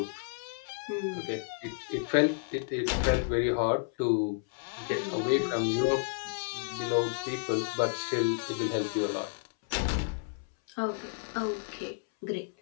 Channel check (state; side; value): silent; right; 57 dB below the other